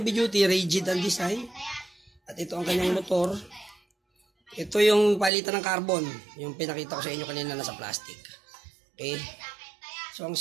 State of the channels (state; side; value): drops out; left; at 5.3 s